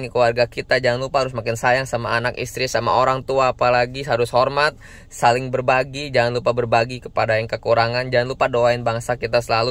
keluarga kita, jangan lupa harus makin sayang sama anak, istri, sama orang tua, apalagi harus hormat, saling berbagi, jangan lupa berbagi kepada yang kekurangan, jangan lupa doain bangsa kita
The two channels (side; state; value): both; identical; correlation 1.00